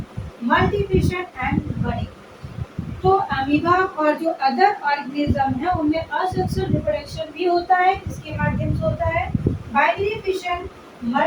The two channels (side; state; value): both; identical; correlation 1.00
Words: multiplication and budding। तो अमीबा और जो अदर ऑर्गेनिज्म है उनमें असेक्सुअल रिप्रोडक्शन भी होता है, किसके माध्यम से होता है, बाइनरी फिशन,